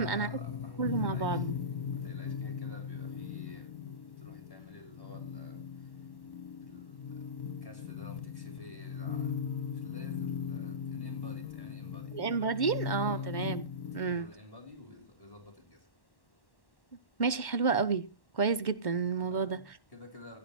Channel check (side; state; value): right; late; 1.1 ms